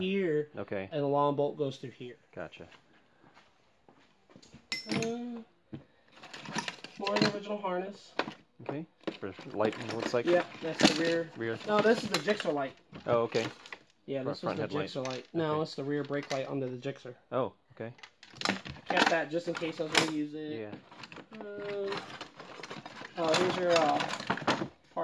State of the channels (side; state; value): both; identical; correlation 1.00